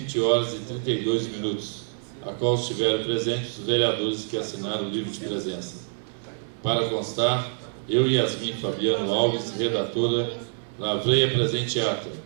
horas e 32 minutos, a qual estiveram presentes os vereadores que assinaram o livro de presença. Para constar, eu, Yasmin Fabiano Alves, redatora, lavrei a presente ata,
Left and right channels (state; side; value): silent; left; digital silence